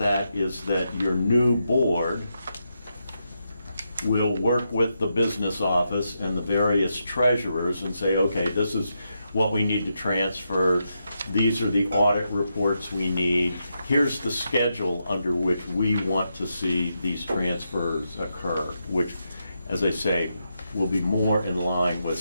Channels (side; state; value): both; inverted; correlation -0.84